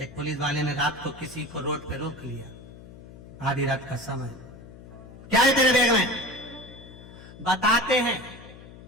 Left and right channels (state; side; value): noise; left; hum, 17 dB below the sound